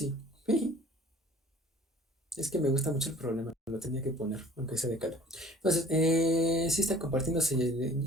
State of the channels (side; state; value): both; normal; correlation 0.50